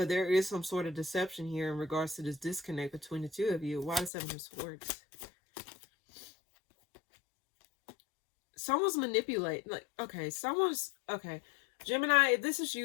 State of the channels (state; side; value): drops out; right; at 4.1 s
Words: there is some sort of deception here in regards to this disconnect between the two of you. Why the Seven of Swords? Someone's manipulating. Like, okay, Gemini, if this is